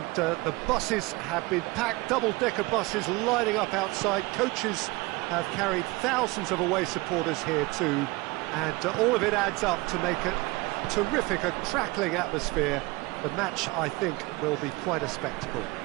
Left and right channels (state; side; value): quieter; left; 23.2 dB